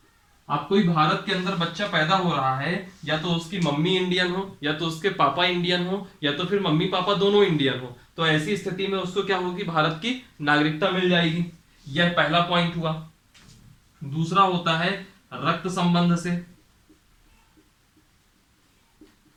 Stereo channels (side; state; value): both; identical; correlation 1.00